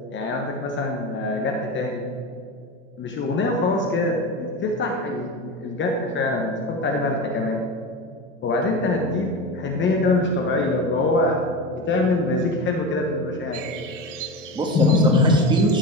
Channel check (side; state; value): both; normal; correlation 0.24